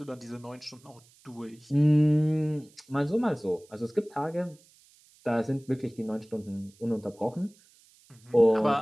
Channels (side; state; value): right; noise; hiss, 29 dB below the sound